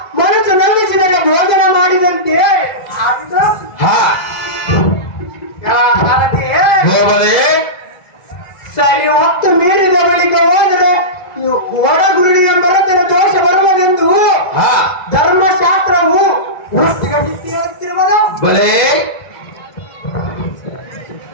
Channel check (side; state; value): right; late; 2.0 ms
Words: ಮನಸ್ಸು ನಂಬಿಸಿದರೆ ಭೋಜನ ಮಾಡಿದಂತೆ ಆಗಿದೆ. ಹಾ, ಸಾರಥಿಯೇ, ಹೋಗದೆ ಸರಿ ಹೊತ್ತು ಮೀರಿದ ಬಳಿಕ ಹೋದರೆ ಹೊರಗುಳಿಯ ಮರತರ ದೋಷ ಬರುವುದೆಂದು ಹಾ, ಧರ್ಮಶಾಸ್ತ್ರವು ಹೇಳುತ್ತಿರುವುದು. ಬಲೆ